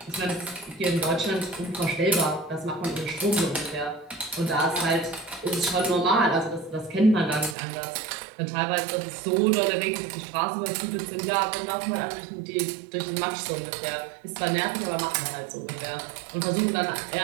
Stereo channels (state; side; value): drops out; left; at 7.6 s